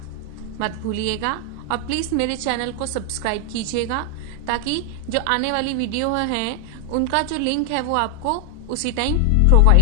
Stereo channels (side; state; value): both; different; correlation 0.00